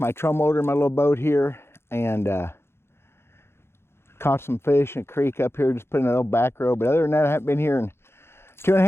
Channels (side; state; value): right; late; 0.12 ms